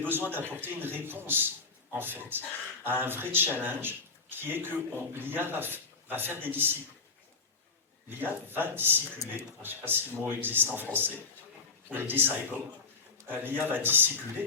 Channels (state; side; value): quieter; right; 4.4 dB